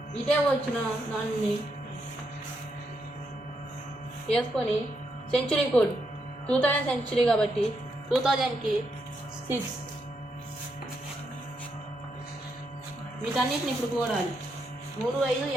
ఇటే వచ్చిన దాన్ని వేసుకొని సెంచురీ కోడ్ 2000 సెంచురీ కాబట్టి 2000కి 6. వీటన్నిటిని ఇప్పుడు కూడాలి. 3, 5,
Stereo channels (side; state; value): both; normal; correlation 0.80